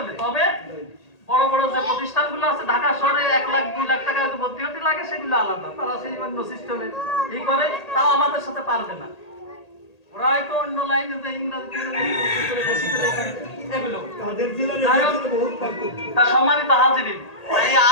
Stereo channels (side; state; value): right; late; 1.8 ms